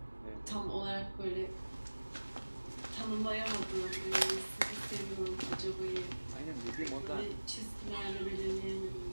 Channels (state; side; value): inverted; both; correlation -1.00